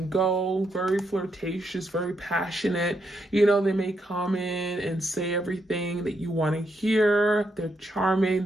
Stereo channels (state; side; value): normal; both; correlation 0.79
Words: go, very flirtatious, very passionate. They may come in and say everything that you want to hear. They're charming,